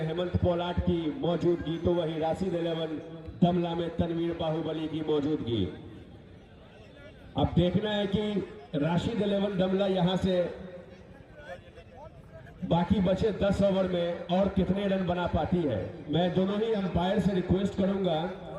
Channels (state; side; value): identical; both; correlation 1.00